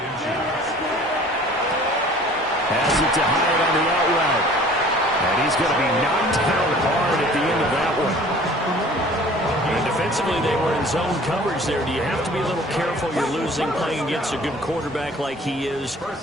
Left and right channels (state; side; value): normal; both; correlation 0.49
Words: Has it to Hyatt on the out route. And he's going to be knocked down hard at the end of that one. And defensively, they were in zone coverage there. Do you have to be a little careful? You're losing playing against a good quarterback like he is